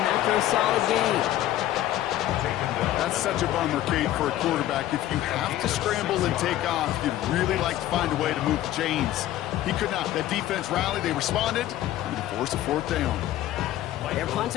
after a solid gain. That's such a bummer, Kate, for a quarterback. If you have to scramble and take off, you'd really like to find a way to move the chains. He could not. That defense rallied. They responded. And they forced a fourth down. Their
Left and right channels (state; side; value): quieter; right; 13.7 dB